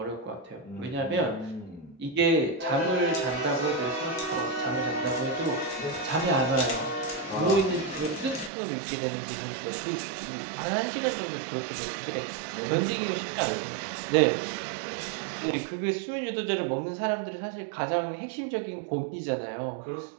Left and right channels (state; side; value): drops out; left; at 8.5 s